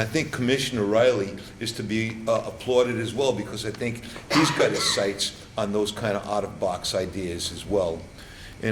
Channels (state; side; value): identical; both; correlation 1.00